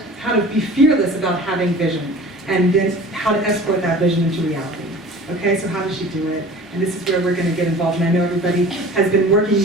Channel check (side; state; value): both; normal; correlation 0.42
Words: to be fearless about having vision, and then how to export that vision into reality. Okay, so how does she do it? And this is where we're going to get involved. And I know everybody has been working,